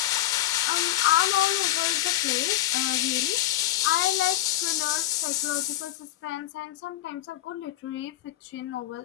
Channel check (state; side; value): quieter; right; 14.0 dB